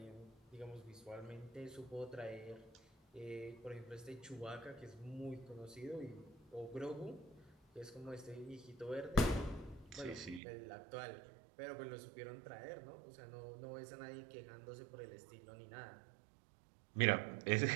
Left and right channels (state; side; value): drops out; left; at 10.4 s